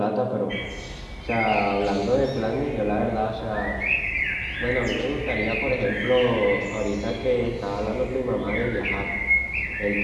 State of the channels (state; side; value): identical; both; correlation 1.00